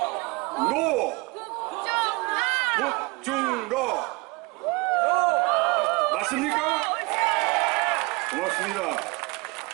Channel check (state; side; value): quieter; left; 26.7 dB